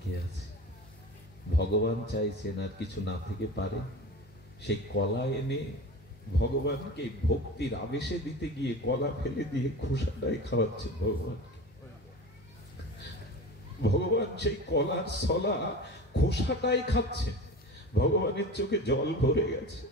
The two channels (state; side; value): normal; both; correlation 0.33